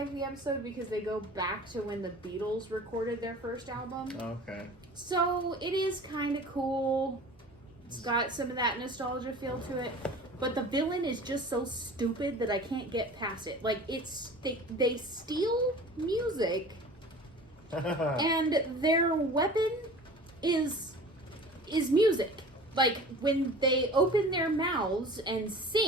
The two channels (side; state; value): both; normal; correlation 0.41